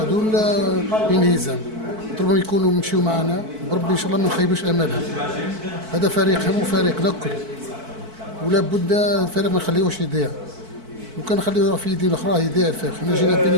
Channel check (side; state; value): left; late; 4.5 ms